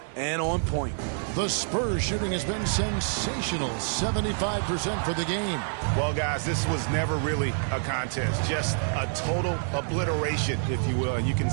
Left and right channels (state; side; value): silent; left; 59 dB below the other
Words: and on point. The Spurs shooting has been sensational. 75% for the game. Well, guys, this was never really a contest. Just a total obliteration, if you will. And you can